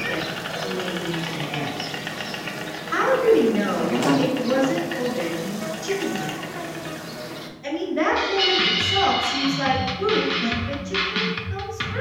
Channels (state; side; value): identical; both; correlation 1.00